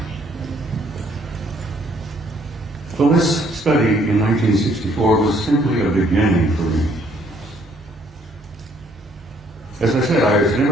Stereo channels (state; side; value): normal; both; correlation 0.65